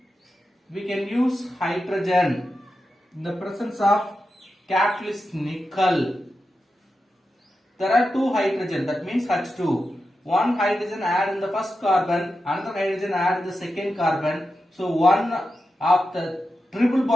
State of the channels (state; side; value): normal; both; correlation 0.90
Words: we can use hydrogen in the presence of catalyst nickel. There are 2 hydrogen, that means H2. 1 hydrogen add in the first carbon, another hydrogen add in the second carbon. So one of the triple